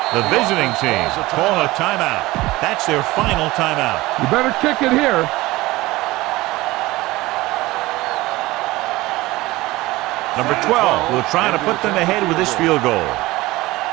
The visiting team call a timeout. That's their final timeout. You better kick it here. Number 12 will try to put them ahead with this field goal.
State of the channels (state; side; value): quieter; left; 19.4 dB